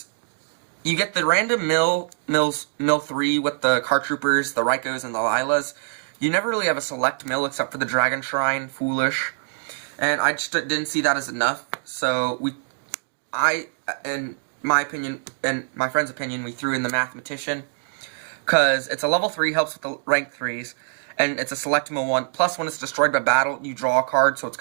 you get the random mill 3 with the card troopers, the Rykos, and the Lilas. You never really have a select mill except for the Dragon Shrine, Foolish, and I just didn't see that as enough, so in my opinion, and my friend's opinion, we threw in the mathematician, because it's a level 3, helps with the rank 3s, and it's a select mill 1, plus when it's destroyed by battle, you draw a card, so it's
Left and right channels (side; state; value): left; silent; digital silence